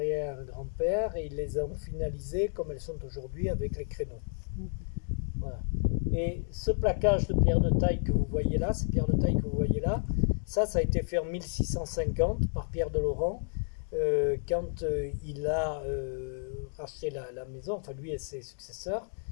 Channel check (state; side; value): silent; right; digital silence